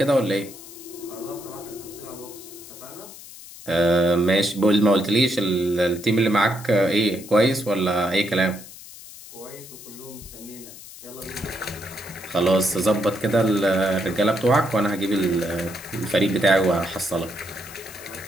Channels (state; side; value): noise; left; hiss, 16 dB below the sound